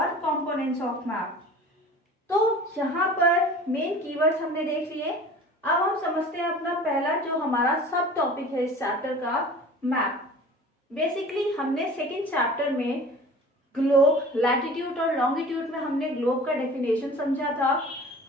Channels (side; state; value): both; normal; correlation 0.42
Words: कंपोनेंट्स ऑफ मैप। तो यहाँ पर मेन कीवर्ड्स हमने देख लिए। अब हम समझते हैं अपना पहला जो हमारा सब टॉपिक है इस चैप्टर का, मैप। बेसिकली हमने सेकेंड चैप्टर में ग्लोब, लैटिट्यूड और लॉन्गिट्यूड में हमने ग्लोब का डेफिनेशन समझा था।